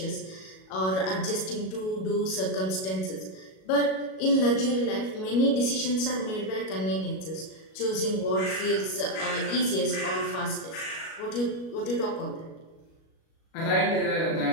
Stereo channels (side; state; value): right; late; 37 ms